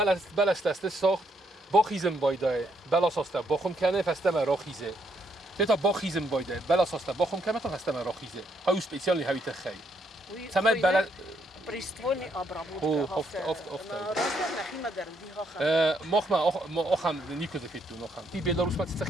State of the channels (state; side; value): normal; both; correlation 0.74